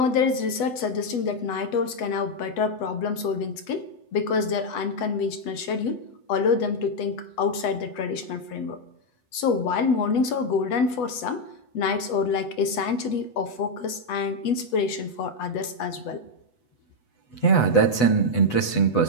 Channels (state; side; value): late; right; 8.1 ms